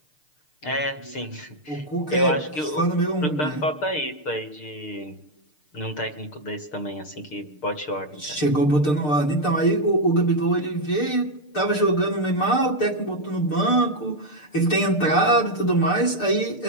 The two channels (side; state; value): right; late; 6.6 ms